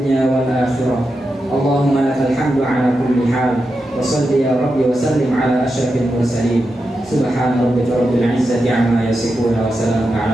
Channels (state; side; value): normal; both; correlation 0.88